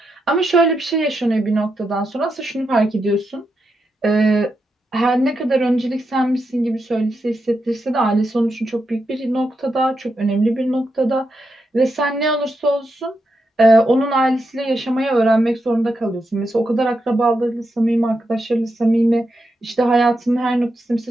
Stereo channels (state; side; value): normal; both; correlation 0.85